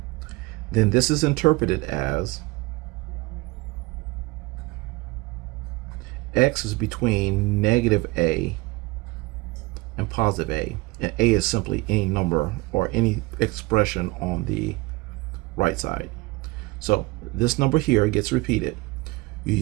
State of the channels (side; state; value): left; quieter; 22.6 dB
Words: then this is interpreted as x is between negative a and positive a, and a is simply any number or any expression on the right side. So this number here gets repeated. You